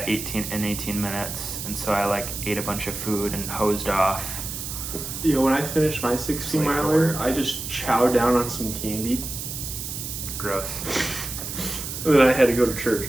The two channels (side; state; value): right; noise; hiss, 6 dB below the sound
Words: 18 minutes, and so I ate a bunch of food and hosed off. When I finished my 16 miler, I just chowed down on some candy. Gross. And then I had to go to church,